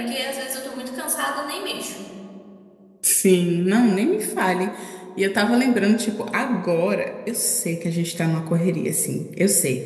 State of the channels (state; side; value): identical; both; correlation 1.00